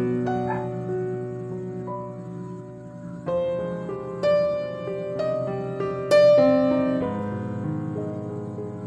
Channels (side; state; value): both; identical; correlation 1.00